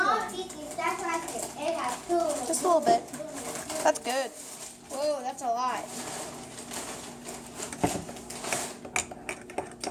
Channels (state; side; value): identical; both; correlation 1.00